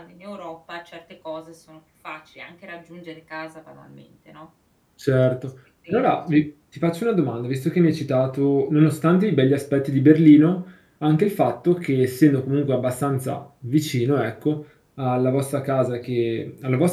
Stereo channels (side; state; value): both; identical; correlation 1.00